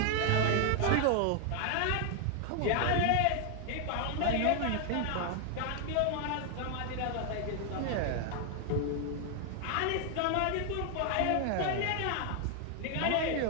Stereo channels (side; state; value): both; different; correlation 0.00